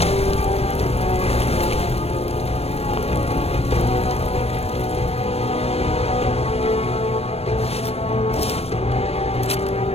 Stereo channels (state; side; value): late; right; 0.29 ms